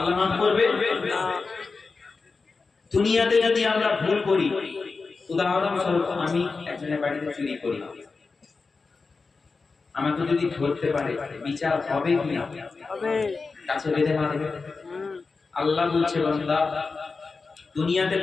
মাফ করবে না। দুনিয়াতে যদি আমরা ভুল করি, উদাহরণস্বরূপ আমি একজনের বাড়িতে চুরি করি, আমাকে যদি ধরতে পারে, বিচার হবে কি না? হবে। কাছে বেঁধে মারবে। আল্লাহ বলছে, বান্দা দুনিয়াতে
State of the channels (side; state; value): right; quieter; 4.3 dB